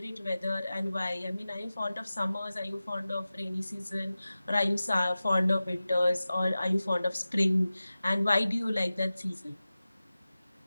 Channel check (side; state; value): both; inverted; correlation -0.96